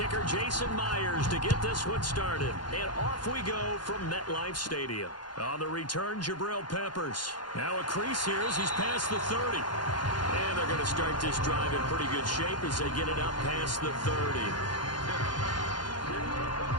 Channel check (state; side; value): late; right; 0.71 ms